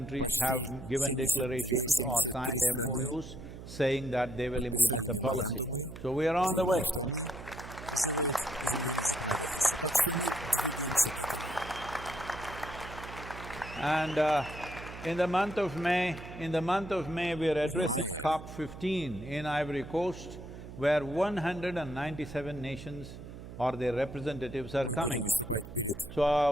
Почти 72-73 страны подписали меморандумы, заявляя, что они сделают изменения в законодательстве. Так что мы двигаемся к этому. В мае мы будем выступать перед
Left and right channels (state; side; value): noise; right; hum, 13 dB below the sound